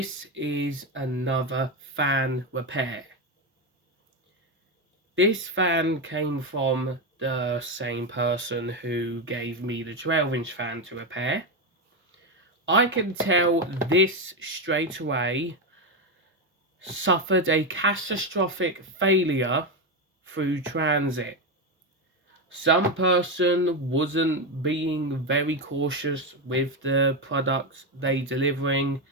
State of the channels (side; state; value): both; normal; correlation 0.10